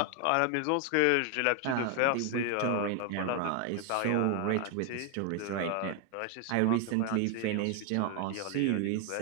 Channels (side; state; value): both; different; correlation 0.01